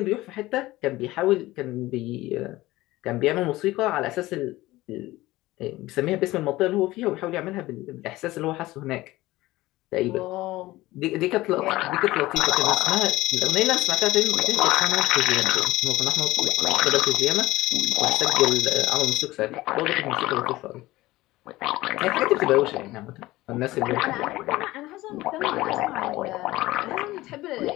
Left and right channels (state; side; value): quieter; right; 18.2 dB